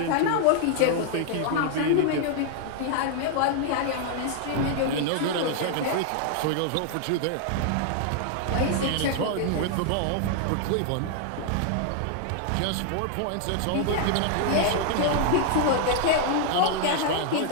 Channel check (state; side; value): different; both; correlation 0.00